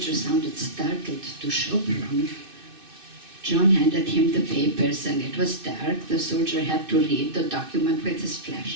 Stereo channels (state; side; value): late; left; 2.6 ms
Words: sounded startled. To Sopron? John handed him the papers, and it was dark. The soldier had to read the document with his